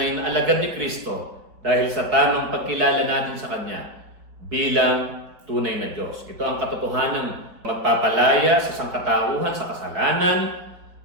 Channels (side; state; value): left; late; 4.6 ms